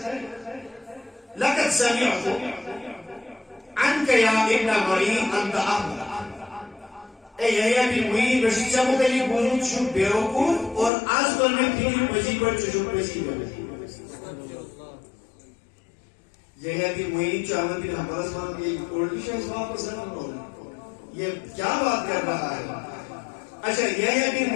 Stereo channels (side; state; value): right; drops out; at 10.9 s